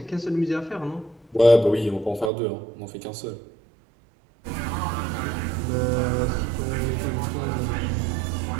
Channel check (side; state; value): left; drops out; at 2.3 s